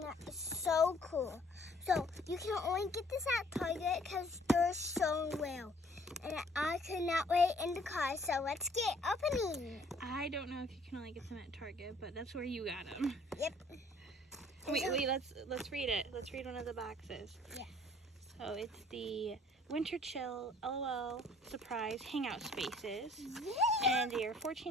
so cool. So you can only get this at Target because they're so real. And I could not wait in the car, so let's get opening. I don't know if you can only get them at Target, but that's where you got them. Yep. Wait, let's read it. Let's read one of the boxes. Yeah. So it's the Winter LOL Surprise Hangout Spaces. Yeah. And they are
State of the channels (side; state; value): both; normal; correlation 0.58